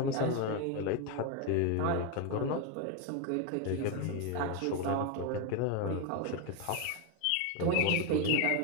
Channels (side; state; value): both; different; correlation 0.02